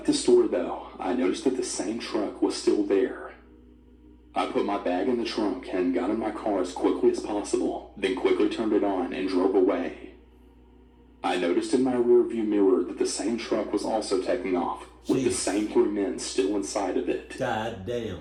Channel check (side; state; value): both; identical; correlation 1.00